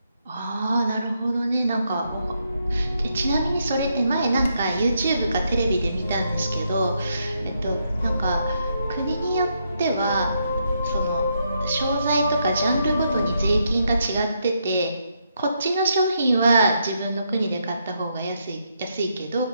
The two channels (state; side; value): inverted; both; correlation -0.78